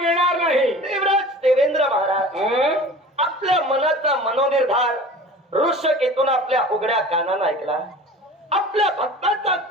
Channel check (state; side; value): normal; both; correlation 0.40